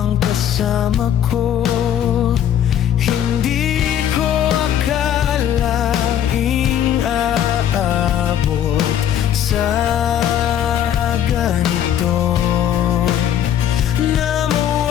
kasama ko. Hindi ko akalaing aabot sa ganito, na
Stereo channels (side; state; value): right; quieter; 10.1 dB